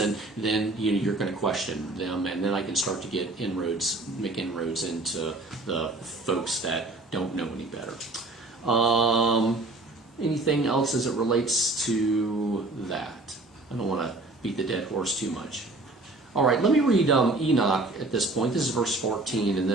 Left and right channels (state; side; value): quieter; left; 3.0 dB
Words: then you're going to question them, and then I can start to make inroads into the folks that don't know any better. Anything else as it relates to that? I don't want to beat the dead horse too much. All right, let me read Enoch at this point. This is verse 14, and